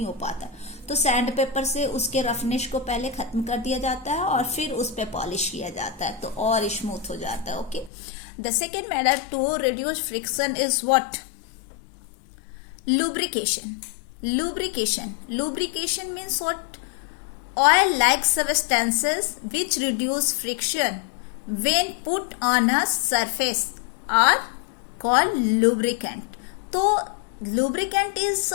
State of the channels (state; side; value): drops out; right; at 7.9 s